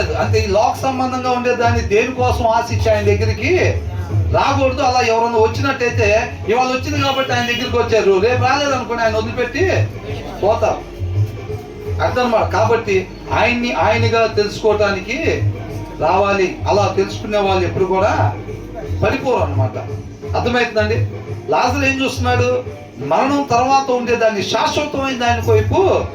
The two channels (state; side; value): identical; both; correlation 1.00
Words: అంతే. ఈ లోక సంబంధంగా ఉండేదాన్ని దేనికోసం ఆశించి ఆయన దగ్గరికి రాకూడదు. అలా ఎవరన్నా వచ్చినట్టయితే ఇవాళ వచ్చింది కాబట్టి ఆయన దగ్గరికి వచ్చారు, రేపు రాలేదనుకోండి ఆయన వదిలిపెట్టి పోతారు. అర్థం మాట. కాబట్టి ఆయనగా తెలుసుకోవటానికి రావాలి. అలా తెలుసుకునే వాళ్ళు ఎప్పుడు కూడా పడిపోరు అన్నమాట. అర్థమవుతుందండి? లాజరు ఏం చూస్తున్నాడు? మరణం తర్వాత ఉండేదాన్ని శాశ్వతమైన దాని వైపు